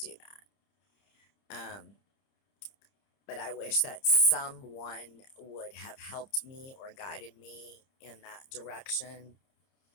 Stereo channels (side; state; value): right; late; 30 ms